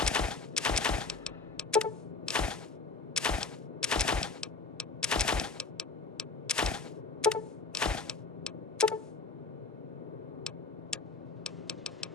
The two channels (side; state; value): right; quieter; 4.1 dB